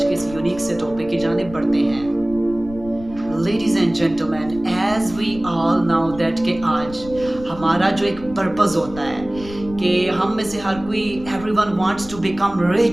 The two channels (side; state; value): left; noise; rumble, 16 dB below the sound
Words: के इस यूनिक से टॉपिक की जानिब बढ़ते हैं। Ladies and gentlemen, as we all know that कि आज हमारा जो एक पर्पस होता है कि हम में से हर कोई everyone wants to become